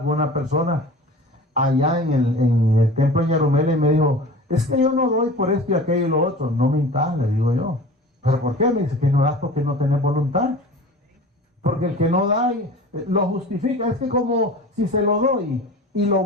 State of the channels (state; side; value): normal; both; correlation 0.39